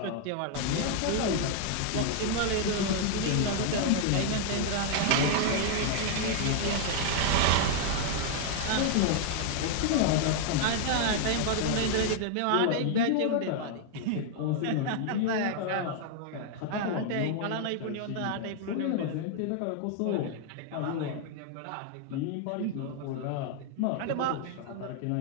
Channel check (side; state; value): both; different; correlation 0.00